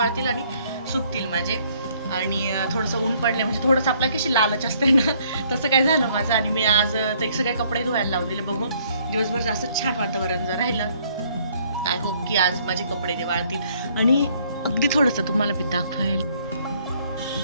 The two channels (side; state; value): both; inverted; correlation -0.64